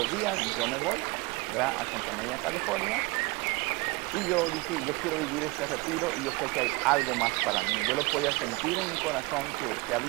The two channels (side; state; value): left; quieter; 25.2 dB